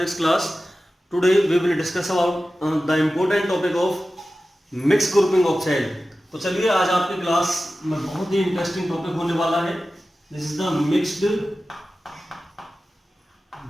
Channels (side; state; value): both; normal; correlation 0.95